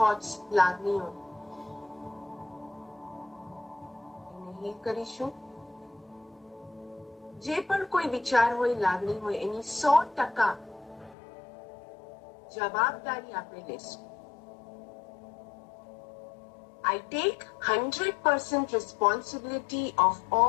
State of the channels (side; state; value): right; drops out; at 11.2 s